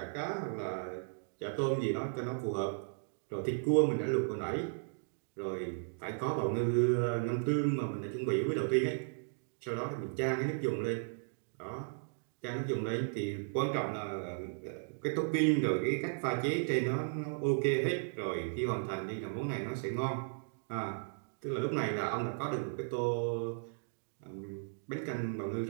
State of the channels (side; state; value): left; silent; digital silence